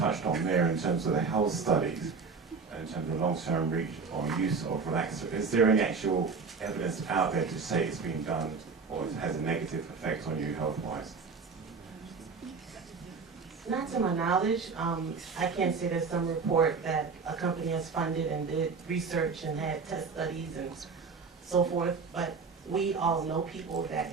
on there in terms of the health studies, in terms of long-term reach or use of relaxer. Is there any actual evidence out there to say it's been done or it has a negative effect on you health-wise? Not to my knowledge. I can't say there's some report that a company has funded and did research and had test studies and so forth, but we all know people that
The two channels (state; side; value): quieter; left; 5.0 dB